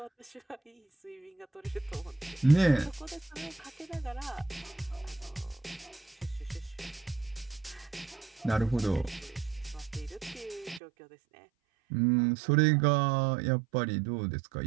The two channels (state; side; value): drops out; left; at 10.8 s